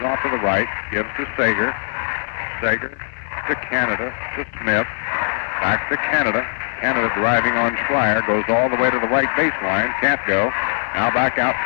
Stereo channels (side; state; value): right; silent; digital silence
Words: off to the right, gives to Sager. Sager to Canada, to Smith. Back to Canada. Canada driving on Schreier, goes all the way to the right baseline, can't go. Now back out